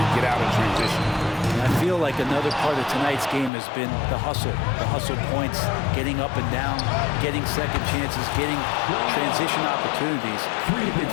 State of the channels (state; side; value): drops out; right; at 3.5 s